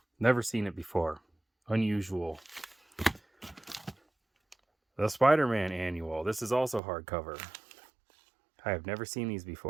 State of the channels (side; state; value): left; drops out; at 6.8 s